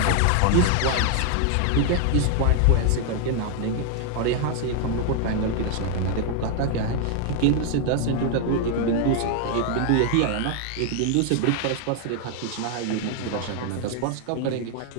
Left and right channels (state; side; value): different; both; correlation 0.00